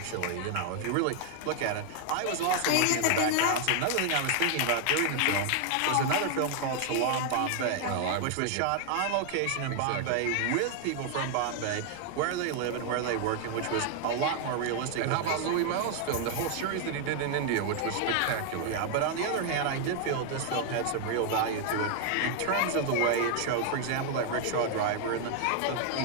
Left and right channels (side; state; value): both; different; correlation 0.00